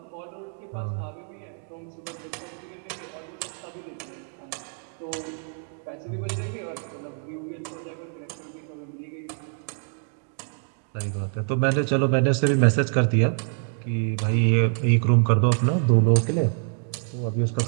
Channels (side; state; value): left; silent; 57 dB below the other